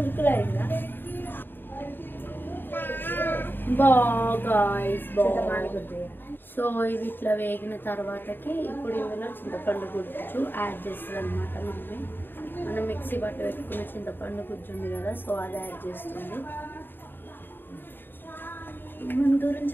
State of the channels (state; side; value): late; right; 0.096 ms